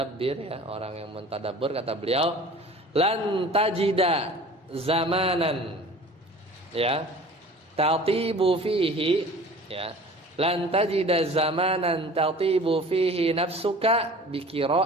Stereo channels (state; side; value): normal; both; correlation 0.43